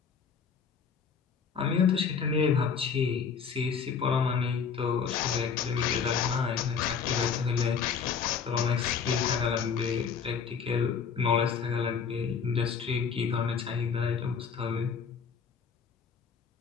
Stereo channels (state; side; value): quieter; right; 6.3 dB